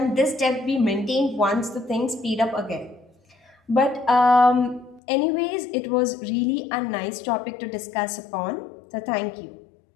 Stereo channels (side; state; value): right; drops out; at 5.0 s